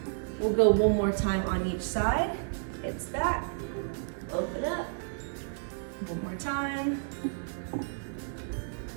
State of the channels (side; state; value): left; silent; 57 dB below the other